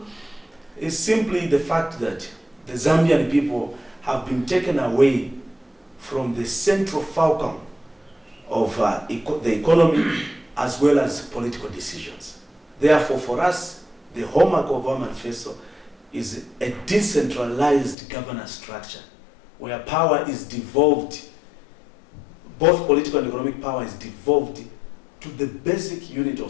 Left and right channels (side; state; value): right; drops out; at 17.9 s